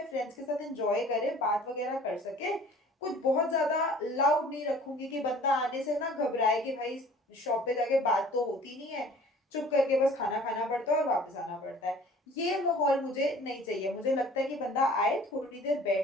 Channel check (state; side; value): normal; both; correlation 0.49